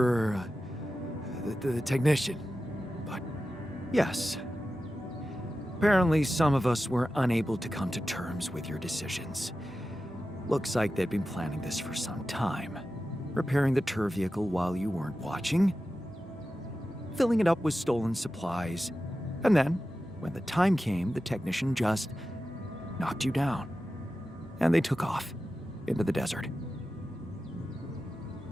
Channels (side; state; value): both; normal; correlation 0.93